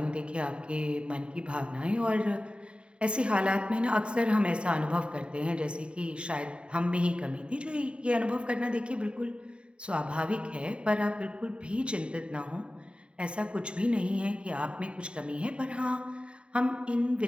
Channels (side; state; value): left; late; 0.055 ms